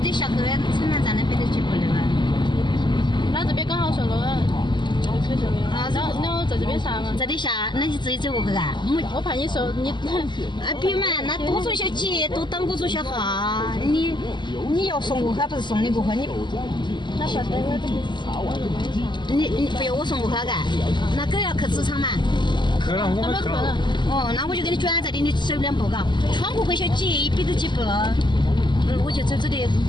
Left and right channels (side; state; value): right; late; 0.22 ms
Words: 下去城南站那边的几步的嘛？那这边刚好上路了。啊，然后在这边下嘛。这里下，那你自己走过去啊？我怕你说你。别嘛，那多走些几，多等我走些哈。你要送过去，不是送你过去，那晓得我这里。你不要我送过去干？那狗要去职场嘛？去了，我们去了。哦，那我就给你转这里，你走2步嘎，穿过去小几100多几步，我就走这里